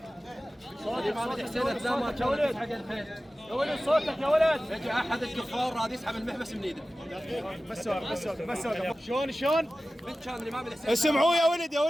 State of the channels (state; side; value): normal; both; correlation 0.96